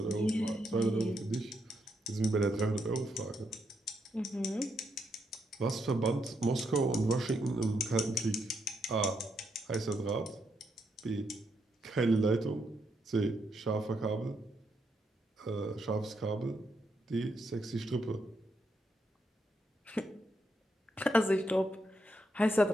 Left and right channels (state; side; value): normal; both; correlation 0.79